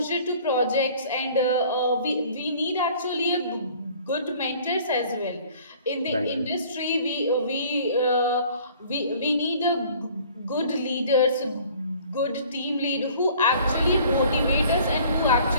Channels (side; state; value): both; inverted; correlation -0.52